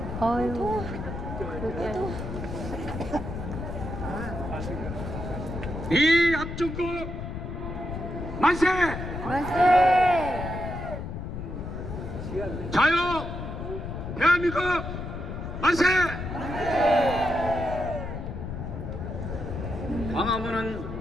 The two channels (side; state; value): left; noise; rumble, 6 dB below the sound